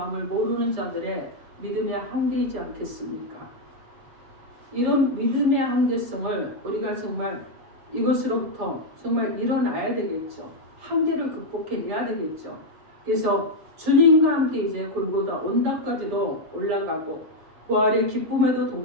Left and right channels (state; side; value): late; left; 7.7 ms